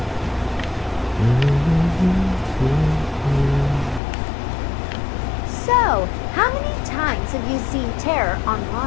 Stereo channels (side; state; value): right; drops out; at 4.0 s